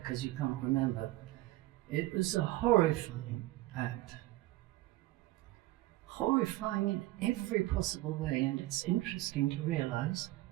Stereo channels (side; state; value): left; quieter; 17.9 dB